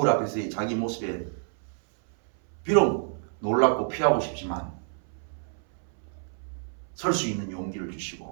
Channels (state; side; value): silent; left; 59 dB below the other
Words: 앞에서의 자기 모습에 비록 놀랍고 피하고 싶지만 설 수 있는 용기를